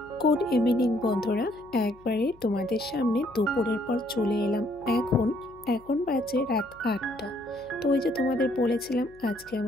গুড ইভিনিং বন্ধুরা, একবারে তোমাদের সামনে দুপুরের পর চলে এলাম। এখন বাজে রাত 8টা। তো ওই যে তোমাদের বলেছিলাম আজকে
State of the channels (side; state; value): left; noise; hum, 26 dB below the sound